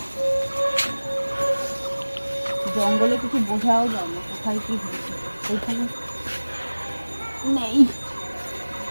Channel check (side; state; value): both; inverted; correlation -1.00